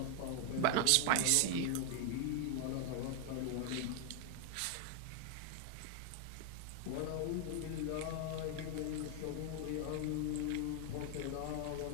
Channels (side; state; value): both; different; correlation 0.00